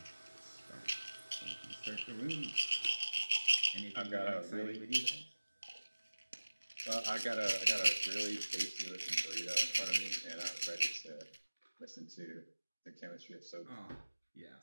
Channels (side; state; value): both; inverted; correlation -1.00